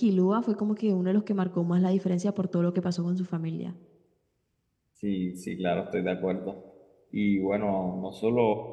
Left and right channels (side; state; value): both; identical; correlation 1.00